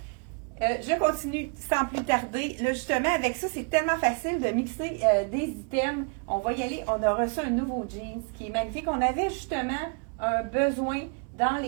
Je continue sans plus tarder. Là, justement, avec ça, c'est tellement facile de mixer des items. On va y aller. On a reçu un nouveau jeans qui est magnifique. On avait justement un besoin dans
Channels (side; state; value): left; quieter; 38.6 dB